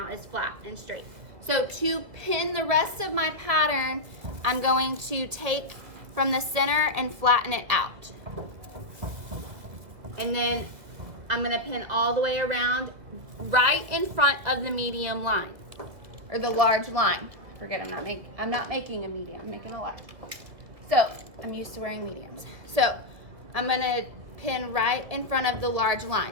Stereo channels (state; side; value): late; left; 2.2 ms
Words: is flat and straight. So to pin the rest of my pattern, I'm going to take from the center and flatten it out. And then I'm going to pin all the way around right in front of the medium line or the large line. Forget I'm not making a medium, I'm making a large. So I'm used to wearing mediums. So I'm going to pin right in front of the large